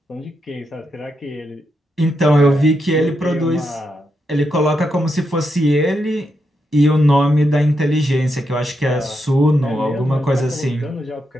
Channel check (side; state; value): both; normal; correlation 0.83